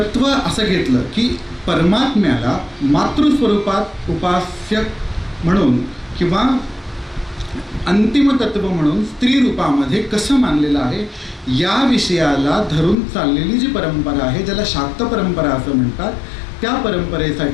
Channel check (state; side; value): drops out; right; at 13.0 s